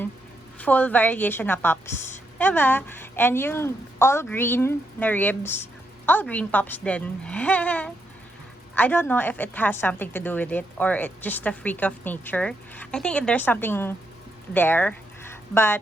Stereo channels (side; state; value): both; normal; correlation 0.80